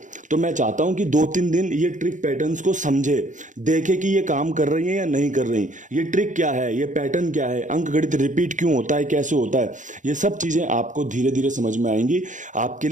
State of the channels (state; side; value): late; left; 0.36 ms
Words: तो मैं चाहता हूं कि 2-3 दिन ये ट्रिक पैटर्न्स को समझे, देखे कि ये काम कर रही है या नहीं कर रही, ये ट्रिक क्या है, ये पैटर्न क्या है, अंक गणित रिपीट क्यों होता है, कैसे होता है, ये सब चीजें आपको धीरे धीरे समझ में आएंगी। आपके